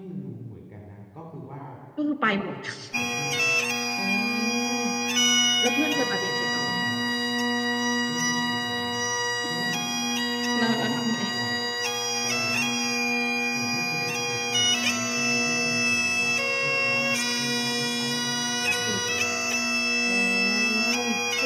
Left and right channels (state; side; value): identical; both; correlation 1.00